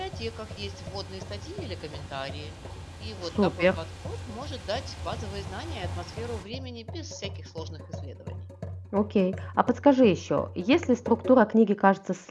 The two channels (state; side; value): identical; both; correlation 1.00